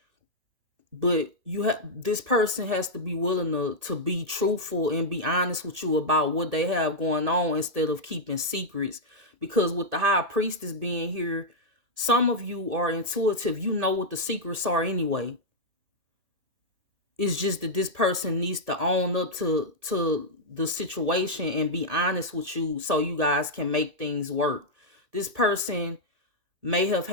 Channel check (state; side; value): late; left; 1.8 ms